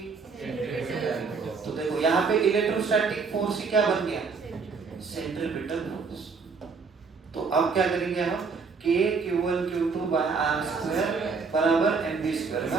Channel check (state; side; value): quieter; left; 5.0 dB